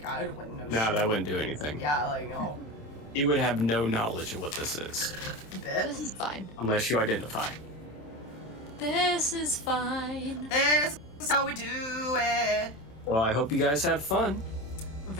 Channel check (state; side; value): late; right; 27 ms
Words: I wouldn't know shit. No, that wouldn't do anything. Yeah, like, no. You would have no knowledge of what this is. Bit. This is fine. Unless you identify. This is fine. This is how we do it. Well, I hope you guys had fun.